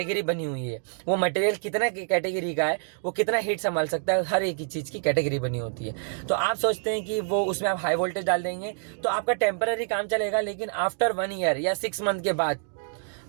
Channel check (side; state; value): left; silent; 60 dB below the other